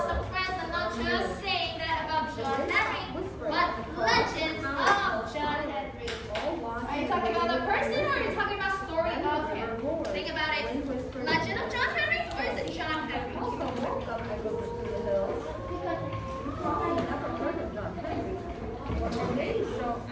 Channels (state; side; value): identical; both; correlation 1.00